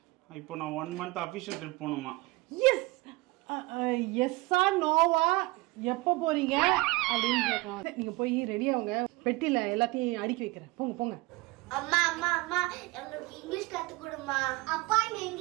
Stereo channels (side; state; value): left; quieter; 22.5 dB